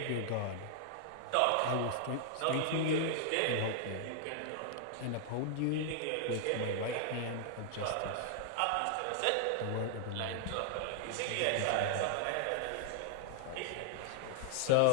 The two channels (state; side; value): different; both; correlation -0.01